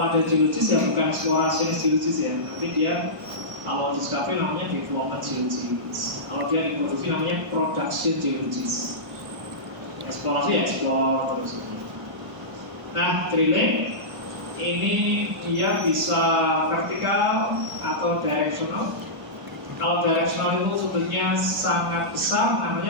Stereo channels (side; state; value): left; late; 1.0 ms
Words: ada geologis ya bukan eksplorasi geologis ya, nanti dia Kalau discovery namanya development geologist. Kalau dia diproduksi namanya production geologist. Eksplorasi explore terus. Nah, drilling ini dia bisa vertikal atau directional. Kalau directional itu sudutnya sangat besar,